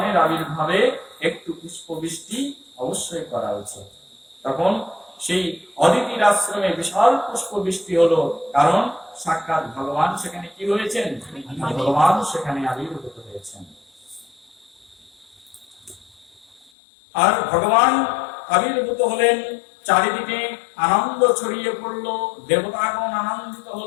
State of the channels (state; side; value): drops out; right; at 16.7 s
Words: আবির্ভাবে একটু পুষ্প বৃষ্টি অবশ্যই করা উচিত। তখন সেই অদিতির আশ্রমে বিশাল পুষ্প বৃষ্টি হলো, কারণ সাক্ষাৎ ভগবান সেখানে কি হয়েছেন, ভগবান সেখানে আবির্ভূত হয়েছেন। আর ভগবান আবির্ভূত হলেন, চারিদিকে আনন্দ ছড়িয়ে পড়লো, দেবতাগণ আনন্দিত